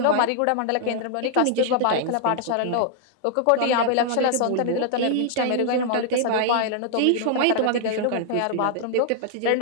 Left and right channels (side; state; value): both; different; correlation -0.01